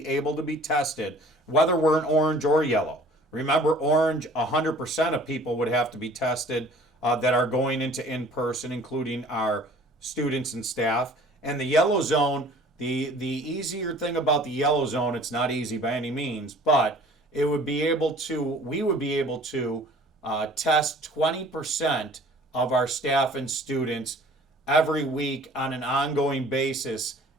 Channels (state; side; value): normal; both; correlation 0.50